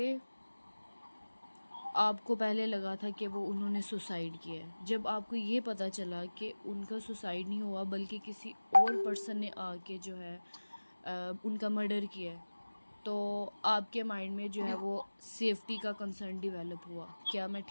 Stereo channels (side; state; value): both; inverted; correlation -1.00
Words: आपको पहले लगा था कि वो उन्होंने सुसाइड किया है, जब आपको ये पता चला कि उनका सुसाइड नहीं हुआ बल्कि किसी और पर्सन ने आके जो है उनका मर्डर किया है, तो आपके माइंड में जो है वो सेफ्टी का कंसर्न डेवलप हुआ। क्या मैं